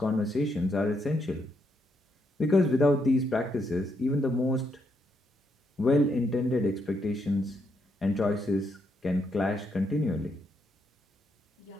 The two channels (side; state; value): both; normal; correlation 0.78